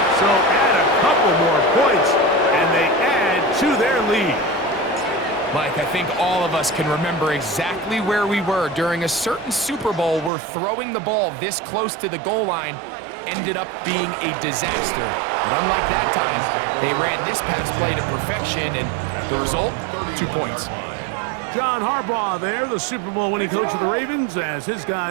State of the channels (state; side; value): drops out; left; at 10.3 s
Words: So add a couple more points, and they add to their lead. Mike, I think all of us can remember exactly where we were during a certain Super Bowl where throwing the ball this close to the goal line ended up being a disaster. But unlike that time, they ran this pass play to perfection, and the result, 2 points. John Harbaugh there, the Super Bowl winning coach of the Ravens, as his